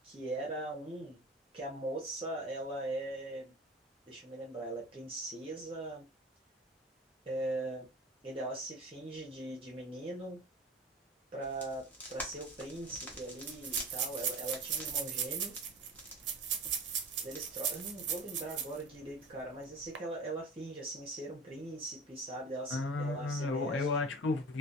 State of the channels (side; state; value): both; normal; correlation 0.37